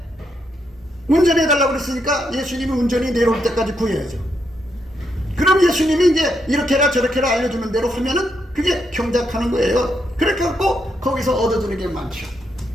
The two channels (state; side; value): normal; both; correlation 0.79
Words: 운전해달라고 그랬으니까 예수님이 운전이 내려올 때까지 구해야죠. 그럼 그럼 예수님이 이제 이렇게라 저렇게라 알려주는 대로 하면은 그게 경작하는 거예요. 그렇게 갖고 거기서 얻어주는 게 많죠.